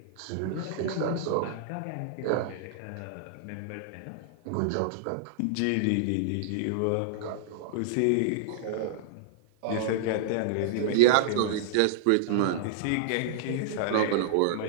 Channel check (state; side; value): different; both; correlation -0.01